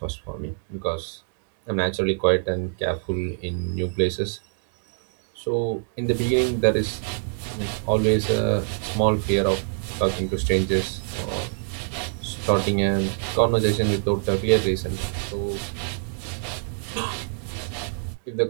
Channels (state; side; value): silent; left; 62 dB below the other